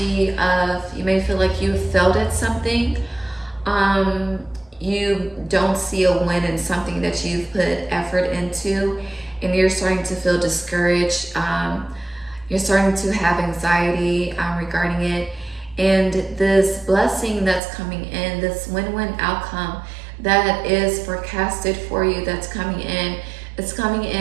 of, you may feel like you failed at something. You don't see a win in something that you've put effort into, and you're starting to feel discouraged. You're starting to have anxiety regarding it. And this blessing that's coming in, this win-win outcome that is forecasted for you, that's coming in, it's coming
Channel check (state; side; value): drops out; left; at 17.6 s